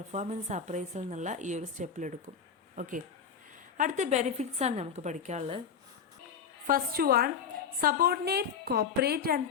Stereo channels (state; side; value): quieter; right; 6.8 dB